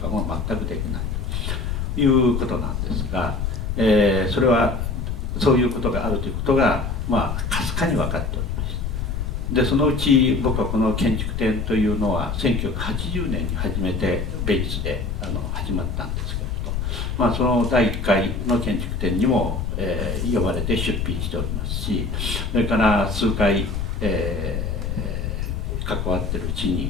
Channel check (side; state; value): left; noise; rumble, 2 dB below the sound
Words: も全くできないということなんですが、それはそういうことがあるということがかすかに分かっておりました。でそのうち僕はこの建築展というのは1980年に初めてベイツで始まったんですけれど、その第1回の建築展にも、呼ばれて出品しておりますし、それから数回、関わってるうち